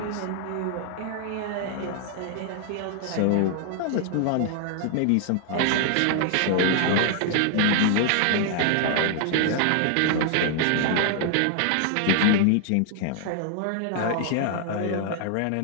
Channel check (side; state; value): both; different; correlation 0.00